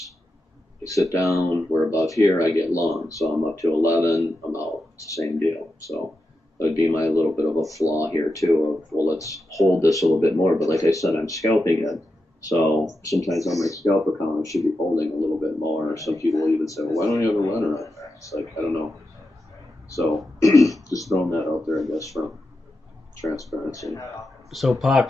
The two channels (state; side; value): normal; both; correlation 0.89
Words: We sit down, we're above here, I get long. So I'm up to 11, I'm out. It's the same deal. So that would be my little bit of a flaw here too of, well, let's hold this a little bit more. But like I said, I'm scalping it. So sometimes on my scalp account, I should be holding a little bit more. Some people even say, well, why don't you have a runner on there? It's like, I don't know. So just throwing that out there, I guess, from transparency. So Pac,